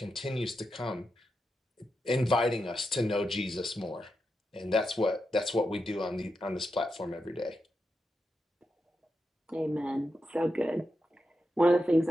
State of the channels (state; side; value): normal; both; correlation 0.87